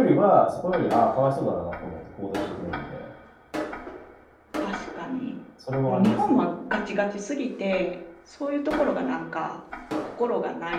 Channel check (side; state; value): both; identical; correlation 1.00